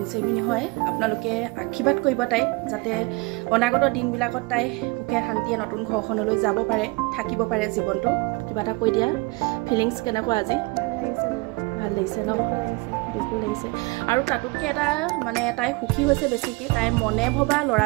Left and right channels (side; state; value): left; quieter; 25.6 dB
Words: চেৰিমনি হয় আপোনালোকে আশীৰ্বাদ কৰিব তাই যাতে অনাগত দিনবিলাকত তাই সুখে শান্তিয়ে নতুন ঘৰখনলৈ যাব পাৰে থাকিব পাৰে জীৱনটো কিবা এটা কৈ দিয়া ফিলিংছ কেনেকুৱা আজি ভাল লাগিছে ন দুখো লাগিছে আৰু তাতোতকৈ এটা মানে তাই সুখী হৈছে বেছিকৈ তাই মনে ভবা